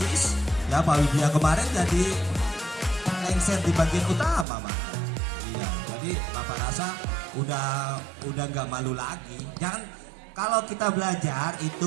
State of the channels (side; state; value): left; drops out; at 4.5 s